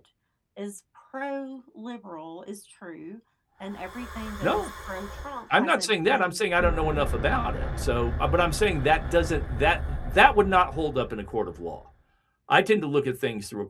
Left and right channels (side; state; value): both; identical; correlation 1.00